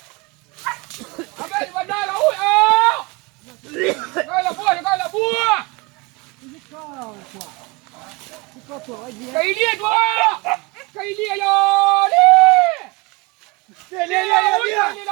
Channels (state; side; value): quieter; left; 25.6 dB